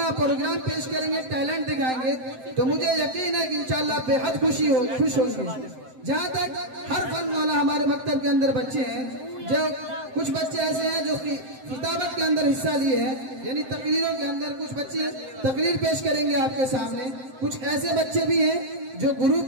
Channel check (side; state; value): left; late; 7.7 ms